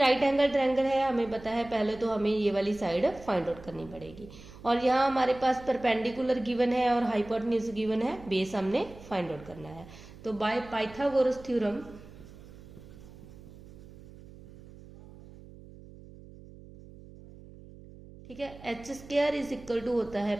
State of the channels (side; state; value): right; noise; hum, 18 dB below the sound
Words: एंगल ट्रायंगल है, हमें पता है, पहले तो हमें ये वाली साइड फाइंड आउट करनी पड़ेगी। और यहाँ हमारे पास परपेंडिकुलर गिवन है और हाइपोटेन्यूज गिवन है, बेस हमने फाइंड आउट करना है। तो बाय पाइथागोरस थ्योरम ठीक है, H square is equal to होता है